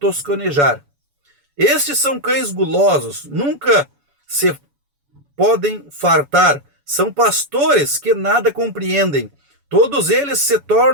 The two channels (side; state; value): left; late; 7.0 ms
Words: Estes são cães gulosos, nunca se podem fartar. São pastores que nada compreendem. Todos eles se